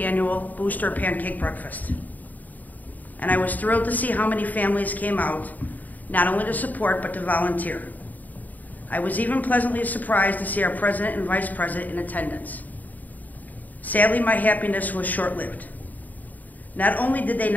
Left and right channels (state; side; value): late; right; 0.081 ms